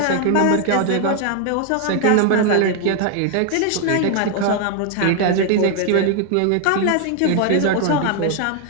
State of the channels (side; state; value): both; different; correlation 0.00